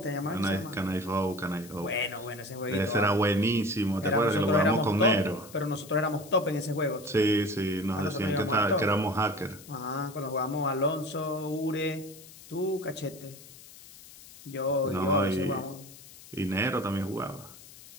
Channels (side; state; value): left; noise; hiss, 19 dB below the sound